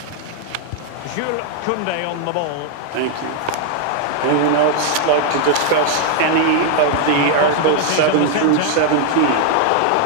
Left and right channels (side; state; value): both; different; correlation 0.00